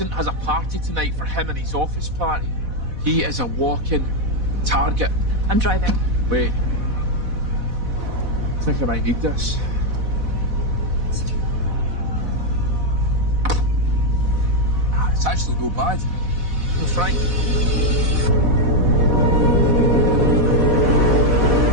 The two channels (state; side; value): late; left; 4.1 ms